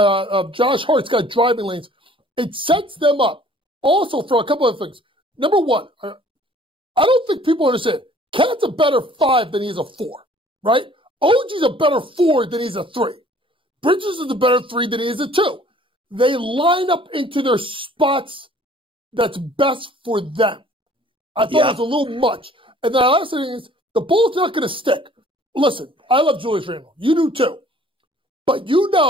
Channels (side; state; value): both; normal; correlation 0.54